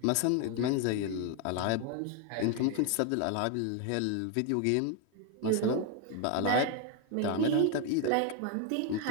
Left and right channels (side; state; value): both; different; correlation 0.01